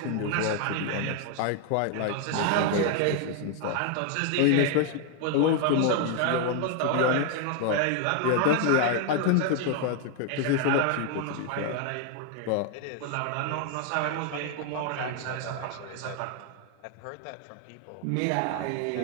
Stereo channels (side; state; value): both; different; correlation 0.00